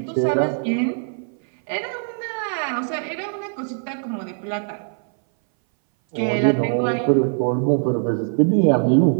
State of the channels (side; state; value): left; silent; 60 dB below the other